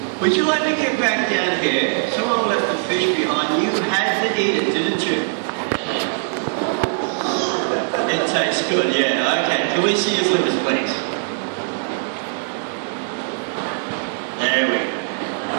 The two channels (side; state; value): left; silent; digital silence